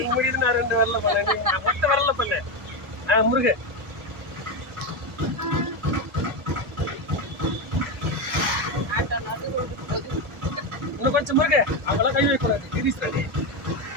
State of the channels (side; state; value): both; normal; correlation 0.12